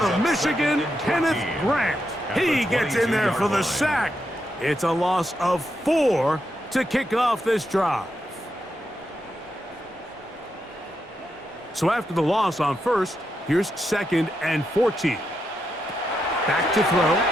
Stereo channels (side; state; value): both; normal; correlation 0.84